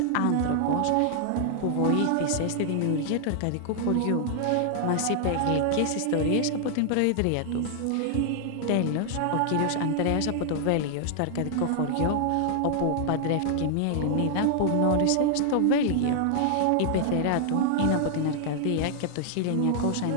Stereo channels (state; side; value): different; both; correlation 0.00